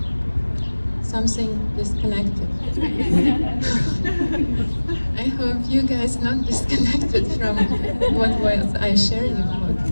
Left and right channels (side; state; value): both; inverted; correlation -1.00